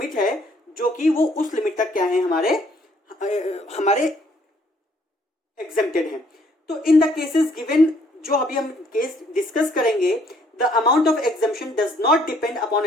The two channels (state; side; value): normal; both; correlation 0.65